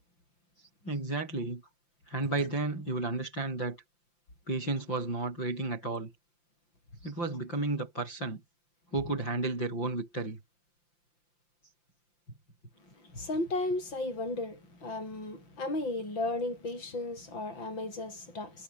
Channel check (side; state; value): right; late; 5.8 ms